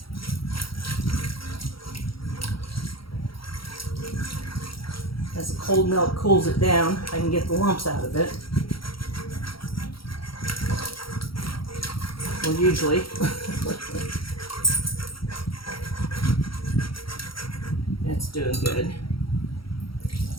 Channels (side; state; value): right; late; 0.74 ms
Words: cold milk cools it down, I can get the lumps out of it. Well, usually. That's doing good.